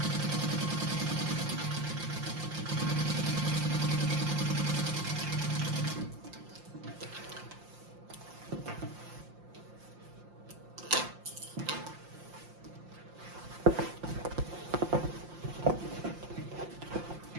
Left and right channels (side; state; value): left; late; 5.7 ms